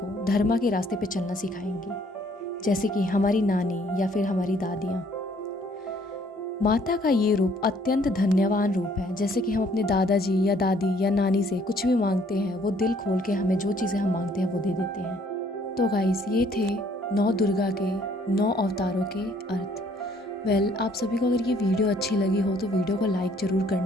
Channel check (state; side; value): normal; both; correlation 0.63